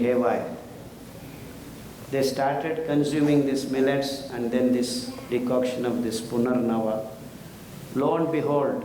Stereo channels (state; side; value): identical; both; correlation 1.00